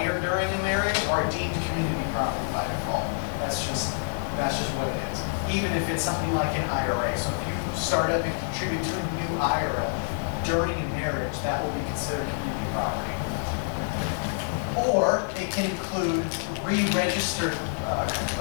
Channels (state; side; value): silent; right; digital silence